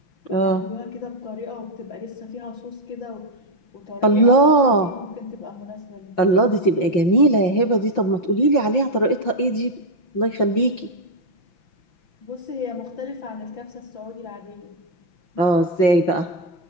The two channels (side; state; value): right; late; 5.5 ms